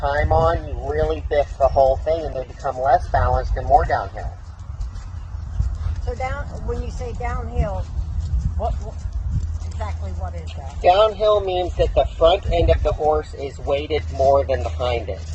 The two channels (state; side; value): identical; both; correlation 1.00